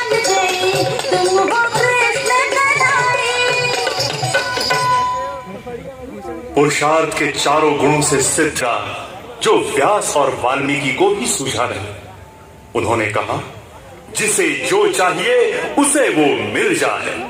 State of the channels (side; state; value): both; identical; correlation 1.00